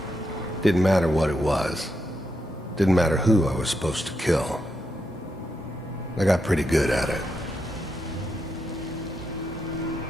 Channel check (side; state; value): both; normal; correlation 0.83